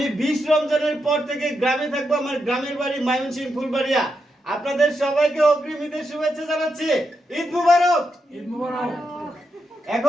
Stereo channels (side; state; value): both; normal; correlation 0.84